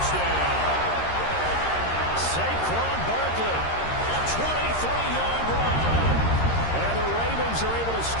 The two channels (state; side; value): late; right; 13 ms